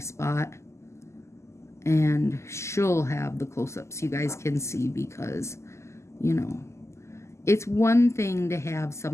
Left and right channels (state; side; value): late; right; 0.13 ms